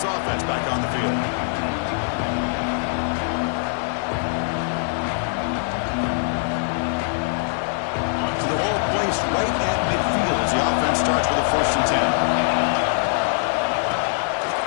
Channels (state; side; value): silent; right; digital silence